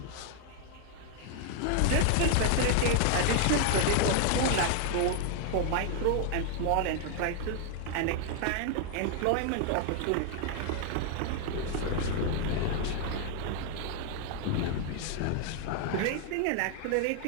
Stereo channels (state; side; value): different; both; correlation 0.00